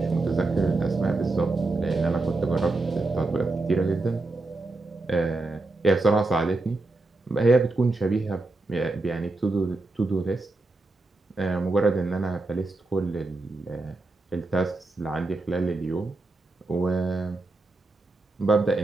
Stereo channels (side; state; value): left; quieter; 3.1 dB